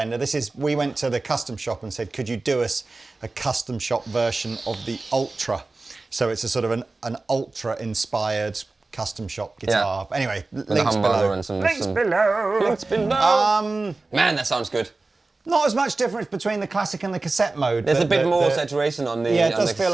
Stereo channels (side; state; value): left; quieter; 3.4 dB